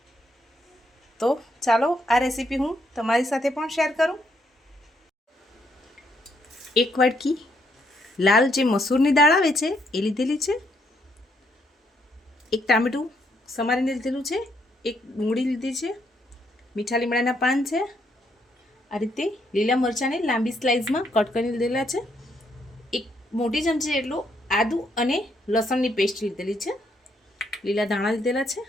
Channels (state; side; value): normal; both; correlation 0.74